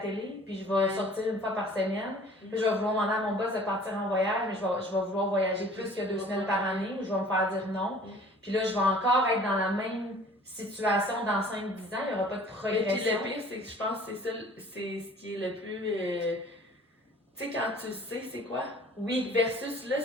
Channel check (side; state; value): both; normal; correlation 0.50